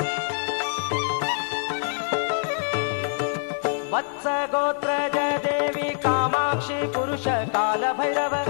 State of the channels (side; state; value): right; quieter; 39.1 dB